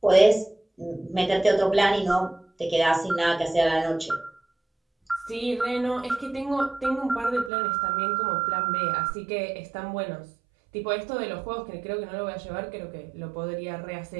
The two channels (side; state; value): left; drops out; at 7.5 s